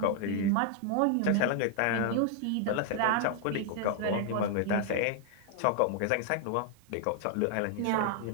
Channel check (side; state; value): both; different; correlation 0.00